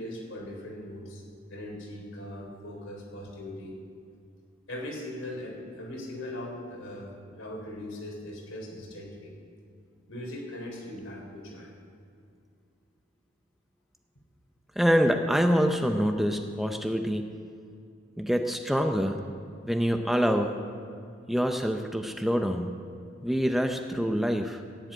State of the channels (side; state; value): both; normal; correlation 0.90